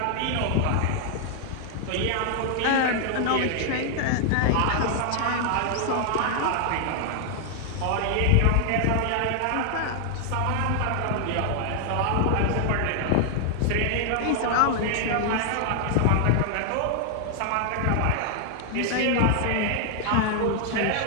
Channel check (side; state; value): both; different; correlation 0.00